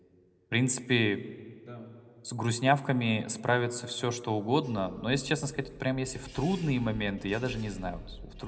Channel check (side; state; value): both; identical; correlation 1.00